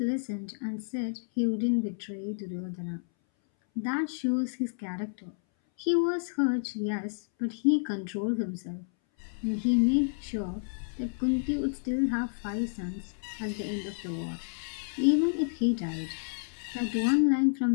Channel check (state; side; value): silent; right; 58 dB below the other